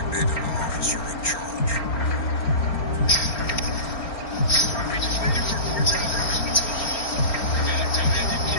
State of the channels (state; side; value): late; right; 4.4 ms